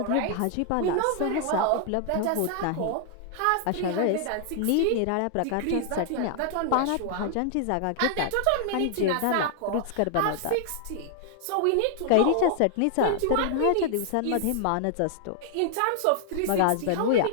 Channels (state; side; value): different; both; correlation 0.00